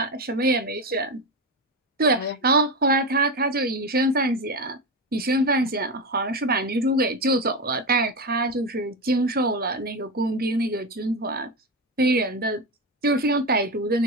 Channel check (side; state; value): both; normal; correlation 0.17